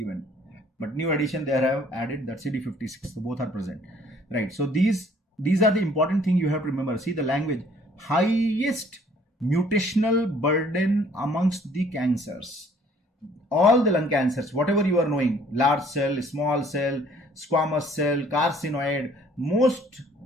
but new edition they have added that CD56, so both are present, right? So these are the important thing you have to remember. See the language, highest mutational burden amongst the cancers, all the lung cancers, whatever you are knowing, large cell, small cell, squamous cell, carcinoid, most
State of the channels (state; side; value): normal; both; correlation 0.58